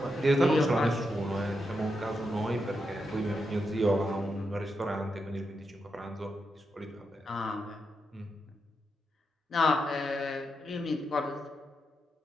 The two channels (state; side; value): normal; both; correlation 0.85